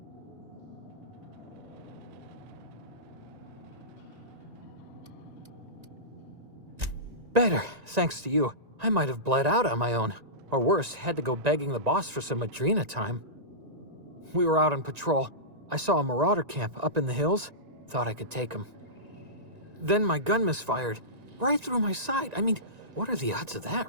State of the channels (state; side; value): late; left; 1.9 ms